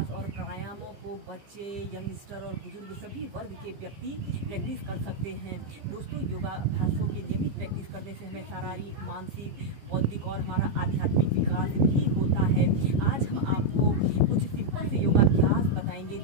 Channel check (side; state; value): left; late; 15 ms